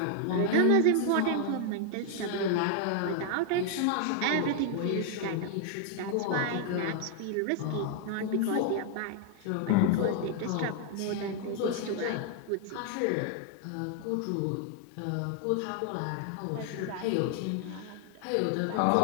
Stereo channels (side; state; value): both; different; correlation 0.00